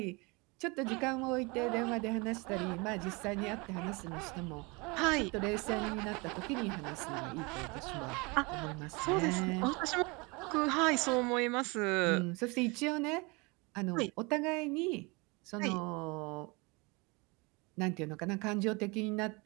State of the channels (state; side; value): quieter; left; 27.5 dB